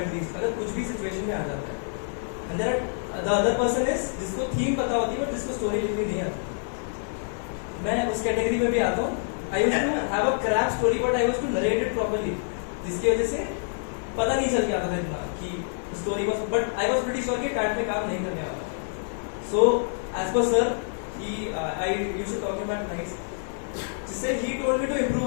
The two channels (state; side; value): silent; right; 60 dB below the other